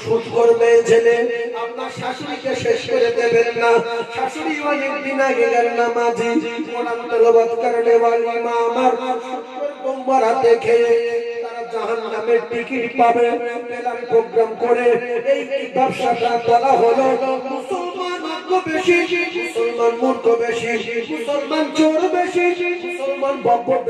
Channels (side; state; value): both; identical; correlation 1.00